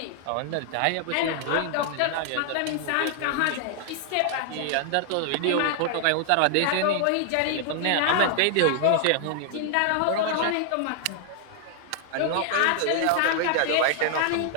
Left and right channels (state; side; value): different; both; correlation 0.00